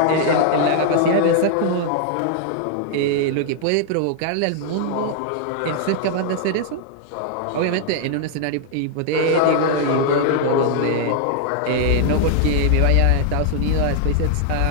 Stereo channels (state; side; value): different; both; correlation -0.01